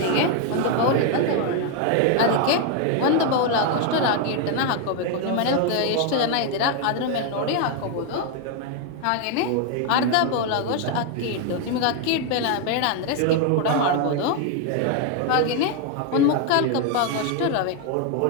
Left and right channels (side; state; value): both; different; correlation 0.01